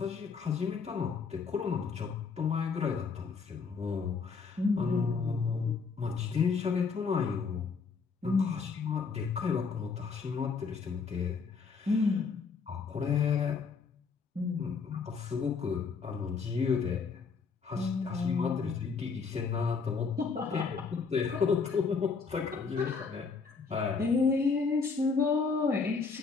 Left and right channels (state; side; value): quieter; right; 5.1 dB